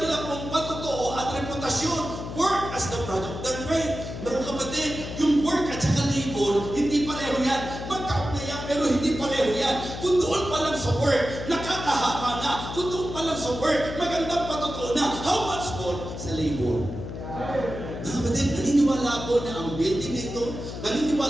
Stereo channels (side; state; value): left; noise; hum, 8 dB below the sound